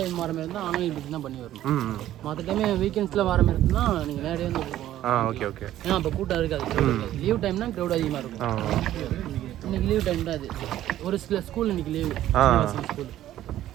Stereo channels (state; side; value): quieter; left; 13.0 dB